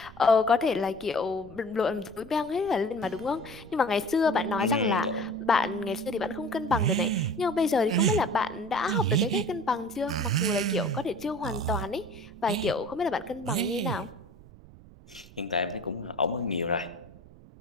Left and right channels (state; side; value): noise; right; rumble, 21 dB below the sound